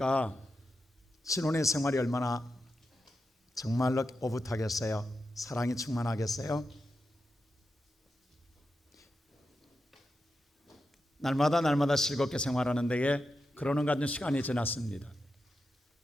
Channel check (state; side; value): normal; both; correlation 0.88